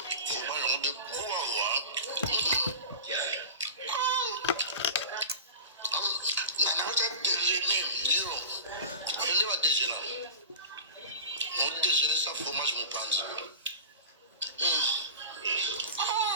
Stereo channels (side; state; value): both; inverted; correlation -0.31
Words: Fromage on de bois. Nana va déjeuner, Liro. Il va déjeuner. On déjeuner sa fromage mon panza.